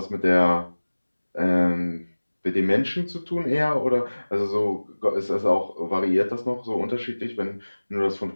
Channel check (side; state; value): both; inverted; correlation -1.00